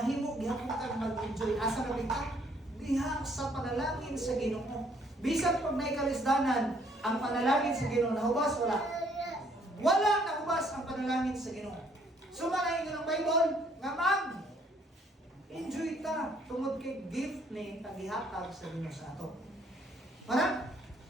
gihapon kang mag-enjoy. Asa na bitaw? Diha sa panalangin sa Ginoo. Bisan pag naikalisdanan, ang panalangin sa Ginoo nahubas wala. Wala nahubas ang panalangin sa Ginoo. Sumanahin ka ng Bible nga enjoy ta tungod kay gift ni tagihatag sa Ginoo sa ato. Para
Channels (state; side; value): normal; both; correlation 0.65